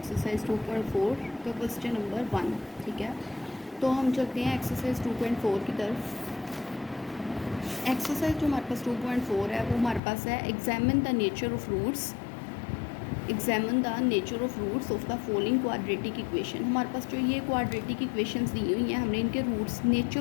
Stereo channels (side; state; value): right; drops out; at 10.0 s